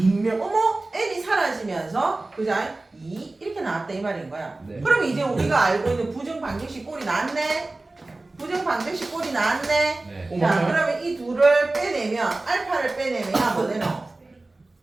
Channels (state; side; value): quieter; left; 3.0 dB